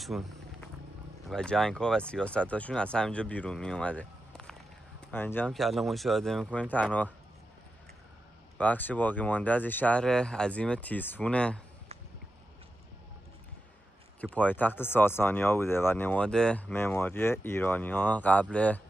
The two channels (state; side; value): normal; both; correlation 0.90